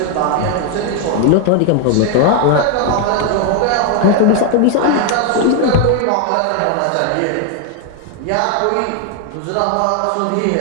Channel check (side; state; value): both; different; correlation 0.00